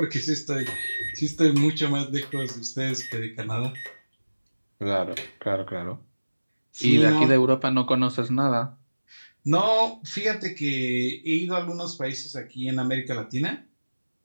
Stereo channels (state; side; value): inverted; both; correlation -1.00